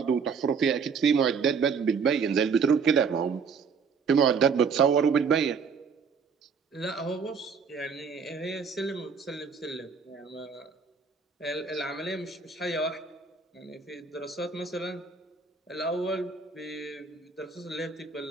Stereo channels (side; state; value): left; quieter; 5.6 dB